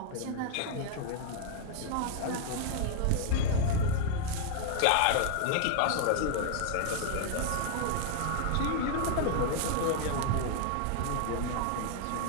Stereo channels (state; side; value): different; both; correlation 0.00